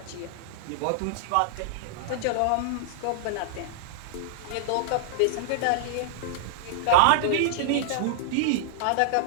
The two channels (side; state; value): both; different; correlation -0.01